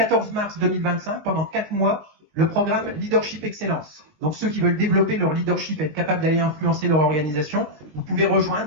mars 2025, pendant 4 mois, le programme Leadership Excellence. Donc ceux qui veulent développer leur leadership, être capables d'aller influencer leur organisation, vous pouvez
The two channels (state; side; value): late; left; 19 ms